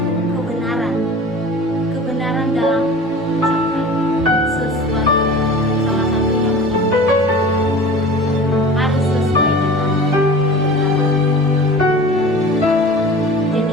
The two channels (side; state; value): both; normal; correlation 0.39